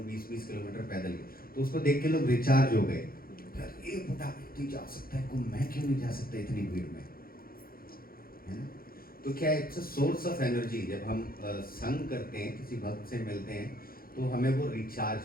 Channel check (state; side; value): late; right; 0.43 ms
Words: 20-20 किलोमीटर पैदल गए, तो उसको देख के लोग रिचार्ज हो गए। एक बूढ़ा व्यक्ति जा सकता है कुंभ, मैं क्यों नहीं जा सकता इतनी भीड़ में, है ना। तो क्या it's a source of energy. जब हम संग करते हैं, किसी भक्त से मिलते हैं, तो हमें वो